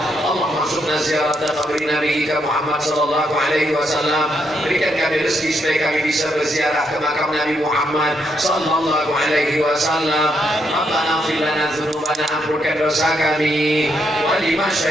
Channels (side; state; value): both; normal; correlation 0.77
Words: Allah masukna ziarah qabri Nabi Muhammad sallallahu alaihi wasallam. Berikan kami rezeki supaya kami bisa berziarah ke makam Nabi Muhammad sallallahu alaihi wasallam. Rabbana ighfir lana dzunubana, ampunkan dosa kami. Wa li